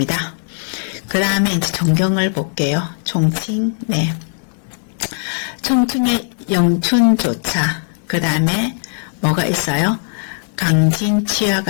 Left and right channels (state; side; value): silent; right; digital silence